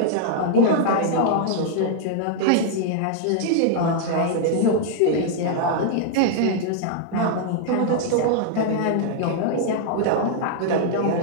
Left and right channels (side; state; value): both; different; correlation 0.00